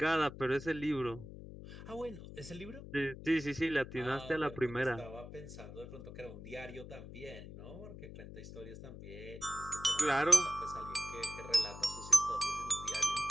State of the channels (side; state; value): left; noise; hum, 13 dB below the sound